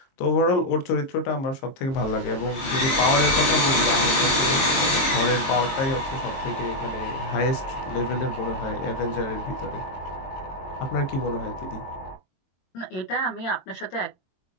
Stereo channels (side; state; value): right; late; 22 ms